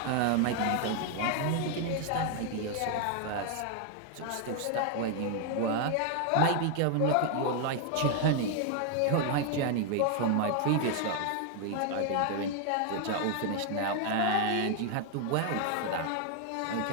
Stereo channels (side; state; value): both; different; correlation 0.00